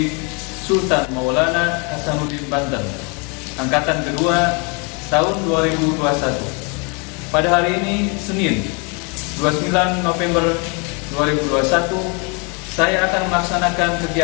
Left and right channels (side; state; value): right; quieter; 33.1 dB